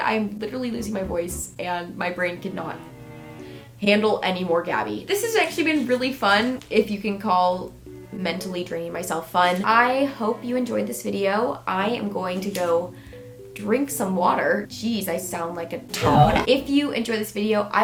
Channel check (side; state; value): both; identical; correlation 1.00